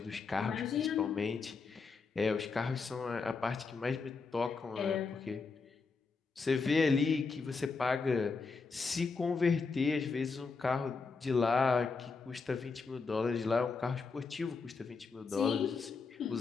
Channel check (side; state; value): right; quieter; 4.6 dB